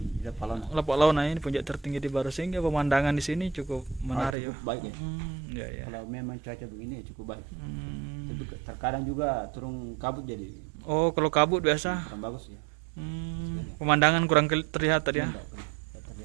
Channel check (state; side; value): drops out; left; at 4.4 s